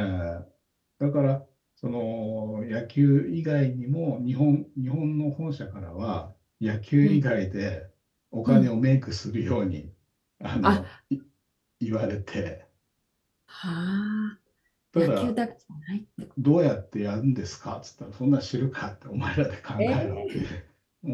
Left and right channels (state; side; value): identical; both; correlation 1.00